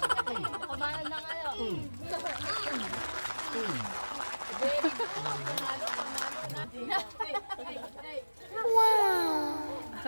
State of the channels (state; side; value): inverted; both; correlation -1.00